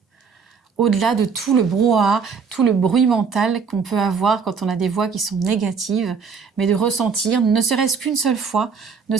Au-delà de tout le brouhaha, tout le bruit mental qu'on peut avoir quand on a des voix qui sont négatives, mais de ressentir, ne serait-ce qu'une seule fois, ne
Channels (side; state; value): left; quieter; 5.7 dB